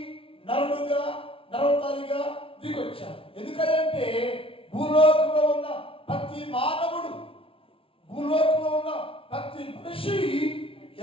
నరవతారిగా దిగొచ్చారు. ఎందుకంటే భూలోకంలో ఉన్న ప్రతి మానవుడు, భూలోకంలో ఉన్న ప్రతి మనిషి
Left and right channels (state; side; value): late; right; 0.26 ms